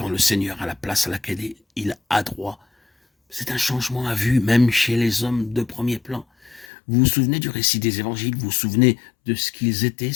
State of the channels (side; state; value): right; drops out; at 6.7 s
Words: le Seigneur a la place à laquelle il a droit. C'est un changement à vue, même chez les hommes de premier plan. Vous vous souvenez du récit des évangiles? Vous vous souvenez de ce qu'ils étaient,